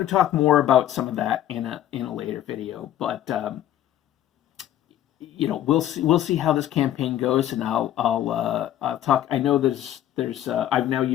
to talk more about some of that in a later video, but we'll see how this campaign goes, and I'll talk. I know there's I've now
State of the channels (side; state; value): right; quieter; 12.1 dB